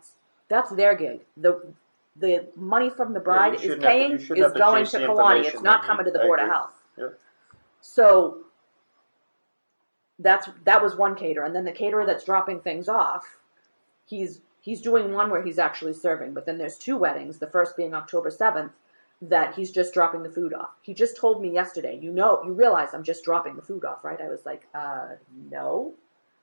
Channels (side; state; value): both; inverted; correlation -1.00